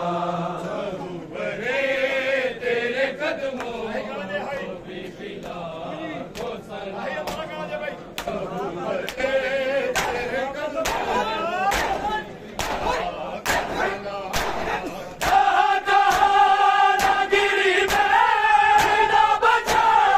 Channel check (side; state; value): both; identical; correlation 1.00